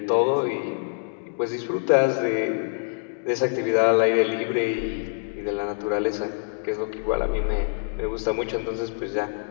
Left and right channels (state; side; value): silent; right; digital silence